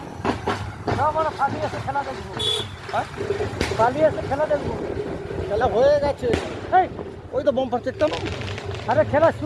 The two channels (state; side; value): identical; both; correlation 1.00